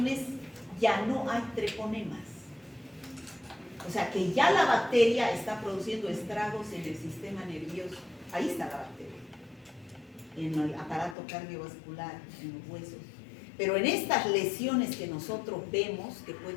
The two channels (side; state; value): right; drops out; at 11.2 s